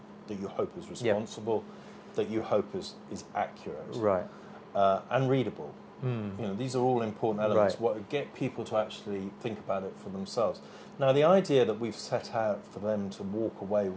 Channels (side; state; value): both; identical; correlation 1.00